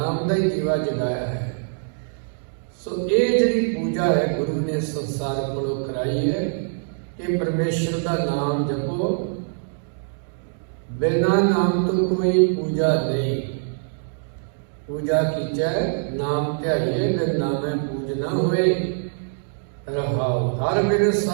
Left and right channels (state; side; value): silent; left; digital silence